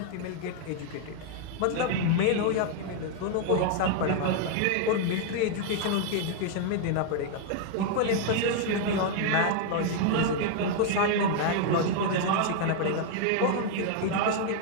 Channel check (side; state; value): both; different; correlation 0.00